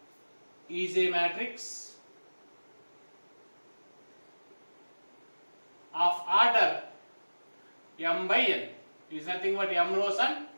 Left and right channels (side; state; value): both; inverted; correlation -1.00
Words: is a matrix of order m by n, is nothing but m rows and